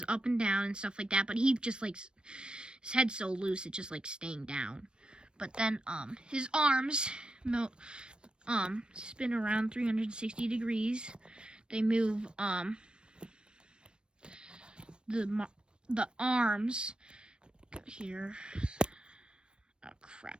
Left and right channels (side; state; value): left; late; 0.054 ms